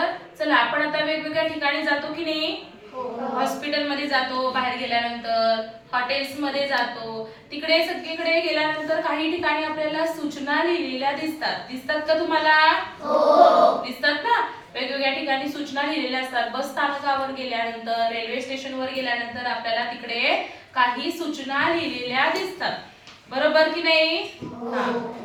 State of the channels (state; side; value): identical; both; correlation 1.00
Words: चला आपण आता वेगवेगळ्या ठिकाणी जातो की नाही. हॉस्पिटलमध्ये जातो, बाहेर गेल्यानंतर हॉटेल्समध्ये जातो, तिकडे सगळीकडे गेल्यानंतर काही ठिकाणी आपल्याला सूचना लिहिलेल्या दिसतात का तुम्हाला? दिसतात ना. वेगवेगळ्या ठिकाणी सूचना लिहिलेल्या असतात. बस स्थानकावर गेल्यानंतर, रेल्वे स्टेशनवर गेल्यानंतर आपल्याला तिकडे काही सूचना लिहिलेल्या दिसतात. बरोबर की नाही?